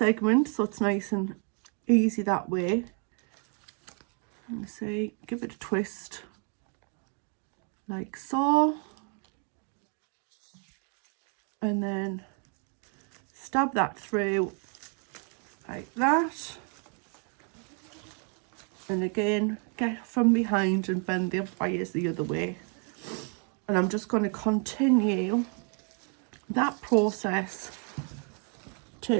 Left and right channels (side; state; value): left; quieter; 39.7 dB